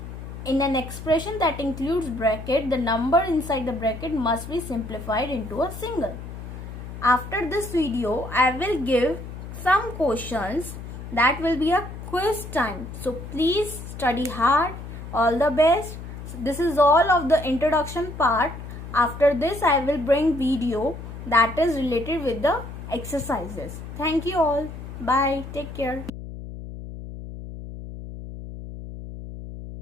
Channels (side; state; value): left; noise; hum, 10 dB below the sound